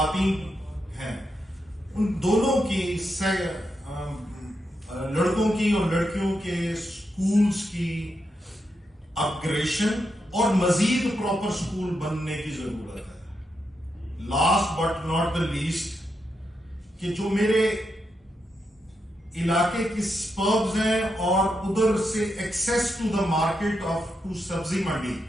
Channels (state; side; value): normal; both; correlation 0.84